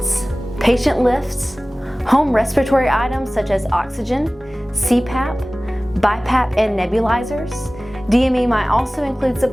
patient lifts, home respiratory items such as oxygen, CPAP, BiPAP, and nebulizers. DME might also include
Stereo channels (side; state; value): both; normal; correlation 0.98